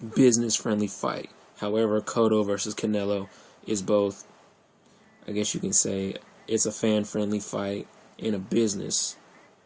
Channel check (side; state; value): both; identical; correlation 1.00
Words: business-friendly fight. However, Cotto versus Canelo is both, I guess you can say, it's a fan-friendly fight and a